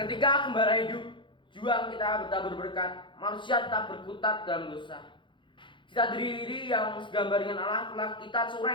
gembala hidup, juang kita bertabur berkat, manusia tetap berkutat dalam dosa. Cita diri yang segambar dengan Allah telah kita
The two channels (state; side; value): late; right; 0.23 ms